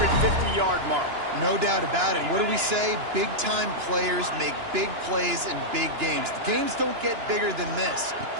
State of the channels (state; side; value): late; left; 2.9 ms